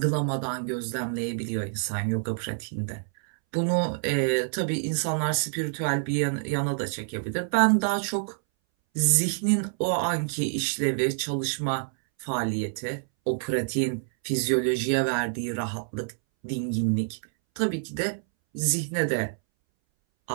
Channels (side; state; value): left; silent; 60 dB below the other